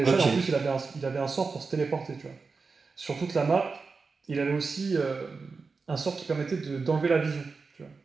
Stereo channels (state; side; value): quieter; left; 4.5 dB